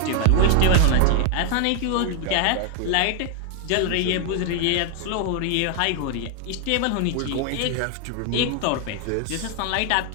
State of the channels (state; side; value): different; both; correlation 0.00